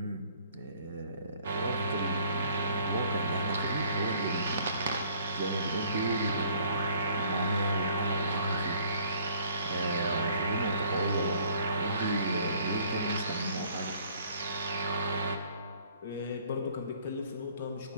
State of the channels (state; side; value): inverted; both; correlation -0.59